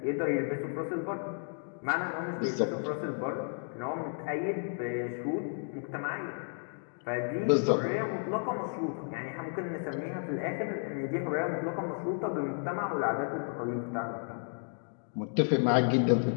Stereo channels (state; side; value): silent; right; 56 dB below the other